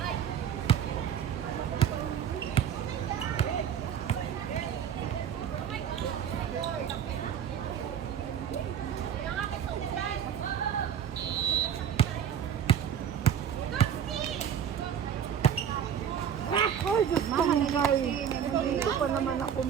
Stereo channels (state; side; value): quieter; left; 8.7 dB